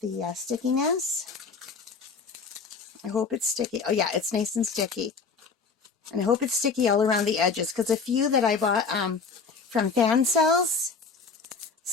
the stickiness. I hope it's sticky. Oh yeah, it's nice and sticky. And I hope it's sticky all around the edges, because a few that I bought from fan cells,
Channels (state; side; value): quieter; right; 5.0 dB